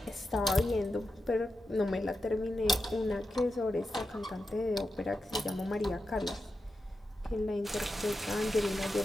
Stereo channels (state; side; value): normal; both; correlation 0.89